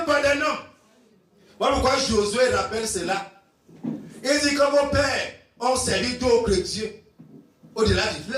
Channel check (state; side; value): identical; both; correlation 1.00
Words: d'un homme. Voilà pourquoi Josué rappelle cela. Il dit que vos pères ont servi d'autres dieux au-delà du